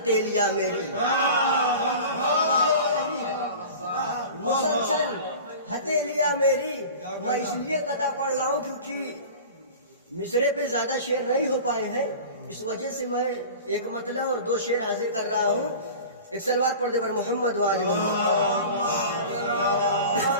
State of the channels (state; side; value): inverted; both; correlation -0.37